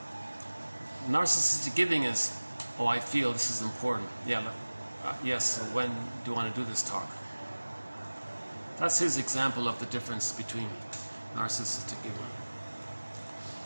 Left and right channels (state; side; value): inverted; both; correlation -1.00